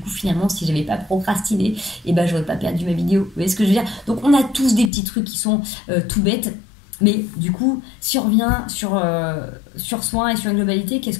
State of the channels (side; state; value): right; drops out; at 4.9 s